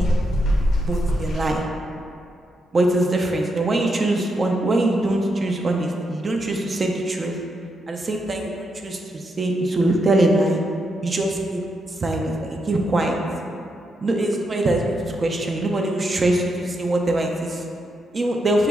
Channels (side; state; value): both; normal; correlation 0.82